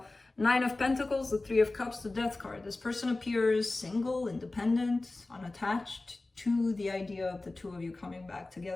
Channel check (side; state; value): right; quieter; 3.1 dB